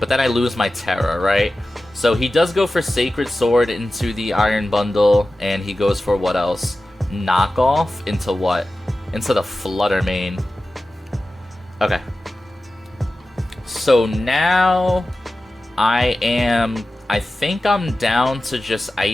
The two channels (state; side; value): normal; both; correlation 0.95